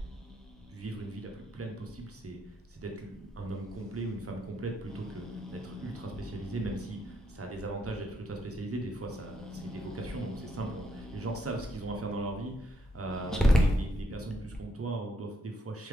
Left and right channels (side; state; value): both; normal; correlation 0.76